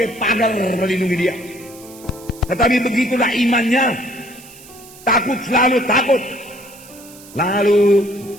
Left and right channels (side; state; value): right; noise; hiss, 20 dB below the sound